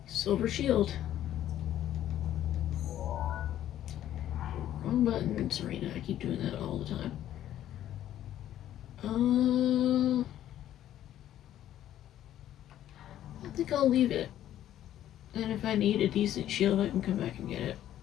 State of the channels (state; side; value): quieter; right; 12.0 dB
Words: Silver shield. Wrong button, Serena. I keep doing that all the time. I think I'll leave it. And if I need a decent shield, I can come back and get it.